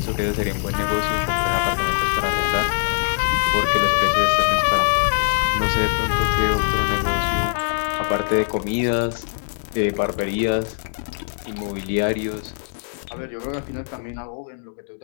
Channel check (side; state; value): right; silent; 64 dB below the other